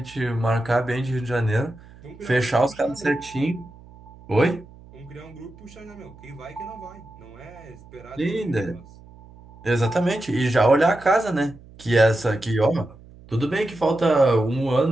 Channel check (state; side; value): noise; right; hum, 22 dB below the sound